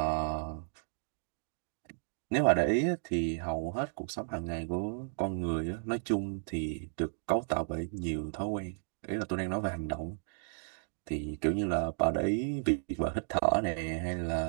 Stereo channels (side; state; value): left; silent; digital silence